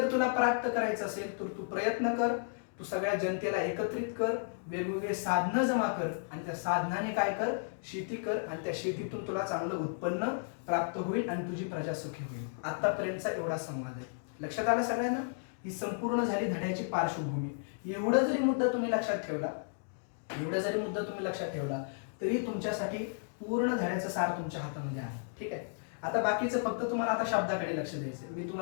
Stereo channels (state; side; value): silent; right; digital silence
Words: तुला प्राप्त करायचं असेल तर तू प्रयत्न कर, तू सगळ्या जनतेला एकत्रित कर, वेगवेगळे साधनं जमा कर आणि त्या साधनाने काय कर, शेती कर आणि त्या शेतीतून तुला चांगलं उत्पन्न प्राप्त होईल आणि तुझी प्रजा सुखी होईल. आतापर्यंतचा एवढा संवाद आहे. लक्षात आलं सगळ्यांना? ही संपूर्ण झाली धड्याची पार्श्वभूमी. एवढा जरी मुद्दा तुम्ही लक्षात ठेवला तरी तुमच्यासाठी पूर्ण धड्याचं सार तुमच्या हातामध्ये आहे. ठीक आहे. आता बाकीचं फक्त तुम्हाला आता शब्दाकडे लक्ष द्यायचं. मी